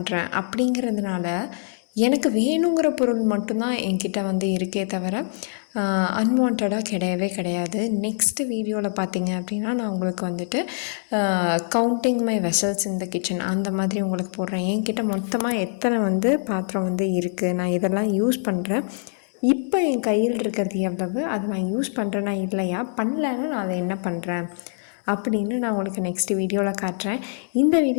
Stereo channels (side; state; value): right; silent; 61 dB below the other